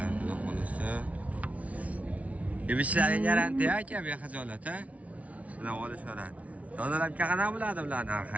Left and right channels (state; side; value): late; left; 0.067 ms